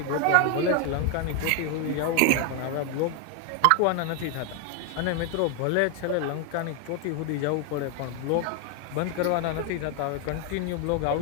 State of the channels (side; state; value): both; different; correlation 0.01